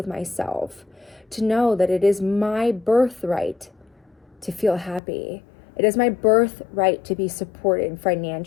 myself, to know that it is my birthright to feel happy, It is my birthright to be supported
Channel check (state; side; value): drops out; right; at 5.0 s